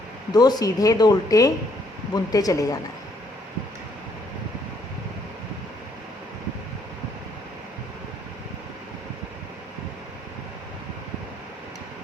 2 सीधे 2 उल्टे बुनते चले जाना है।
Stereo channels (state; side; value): normal; both; correlation 0.68